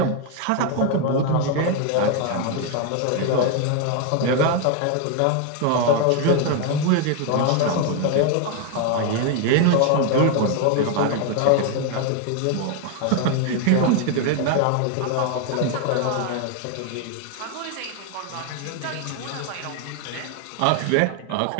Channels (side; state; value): both; different; correlation 0.01